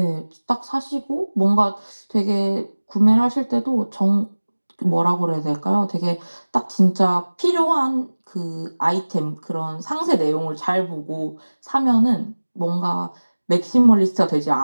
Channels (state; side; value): inverted; both; correlation -1.00